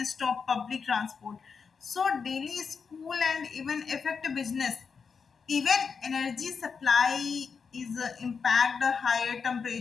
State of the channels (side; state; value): right; quieter; 5.7 dB